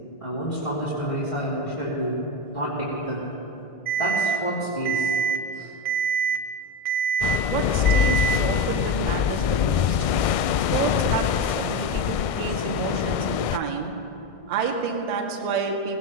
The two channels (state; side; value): late; right; 1.6 ms